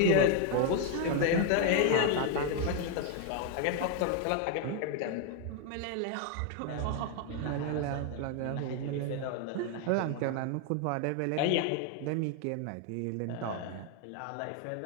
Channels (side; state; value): both; different; correlation 0.00